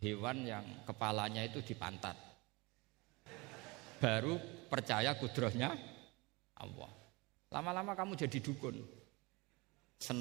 hewan yang kepalanya itu di pantat, baru percaya kudrahnya Allah. Lama-lama kamu jadi dukun,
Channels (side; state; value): left; quieter; 25.3 dB